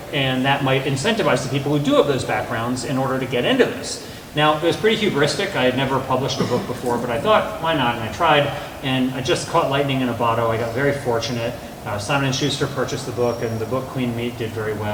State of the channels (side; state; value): both; identical; correlation 1.00